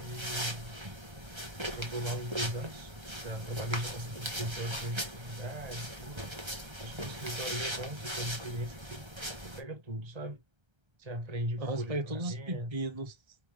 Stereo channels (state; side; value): late; left; 1.3 ms